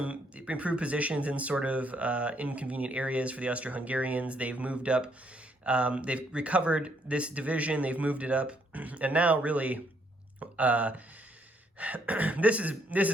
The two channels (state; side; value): normal; both; correlation 0.71